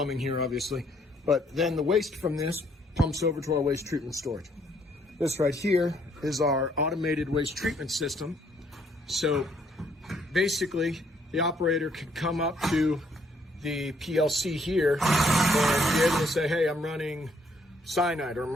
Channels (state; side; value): normal; both; correlation 0.68